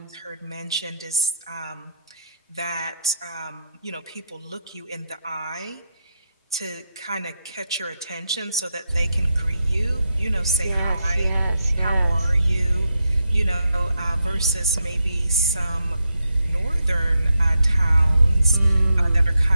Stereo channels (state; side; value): inverted; both; correlation -0.83